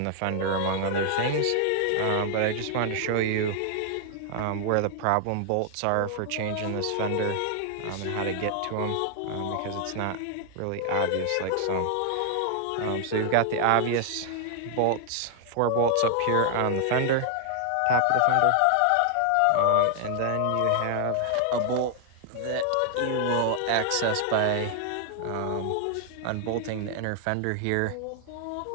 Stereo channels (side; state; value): both; different; correlation 0.00